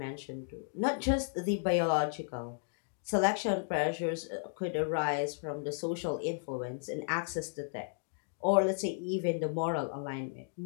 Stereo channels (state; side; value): silent; right; digital silence